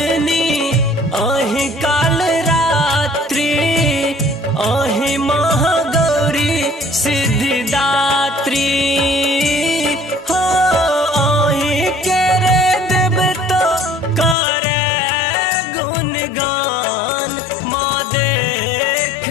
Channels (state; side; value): drops out; right; at 14.4 s